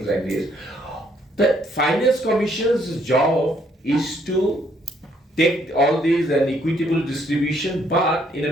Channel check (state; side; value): normal; both; correlation 0.68